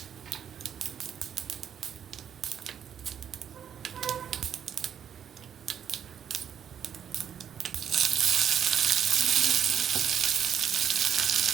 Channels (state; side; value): quieter; left; 8.6 dB